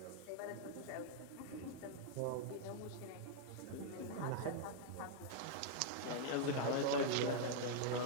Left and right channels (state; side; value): different; both; correlation -0.01